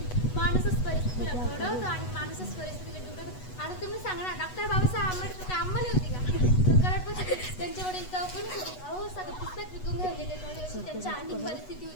माणूसच परिस्थितीला घडवतो आणि माणूसच परिस्थितीला घडवतो. आता तुम्ही सांगा ना, डॉक्टर बाबासाहेब आंबेडकर काय अंमली होती का? कराडपासून त्यांच्या वडील कोणी होते, अहो सगळं पुस्तक विकून घेऊन गेले, अशी त्यांची आर्थिक परिस्थिती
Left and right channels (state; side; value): late; right; 8.1 ms